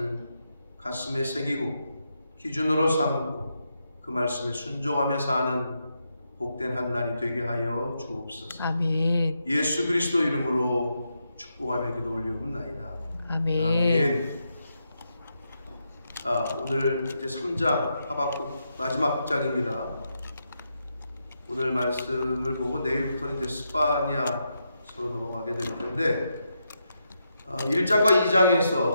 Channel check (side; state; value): both; inverted; correlation -0.83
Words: 가슴에 새기고 기준으로 삼고 그 말씀에 순종하며 사는 복된 한 날이 되게 하여 주옵소서. 아멘. 예수 그리스도 이름으로 축복하며 기도 올리옵나이다. 아멘. 아멘. 오늘 이제 3장 하박국 마지막 장입니다. 오늘 말씀을 보고 내일부터는 이제 스파냐서로 넘어가게 될 텐데, 1장과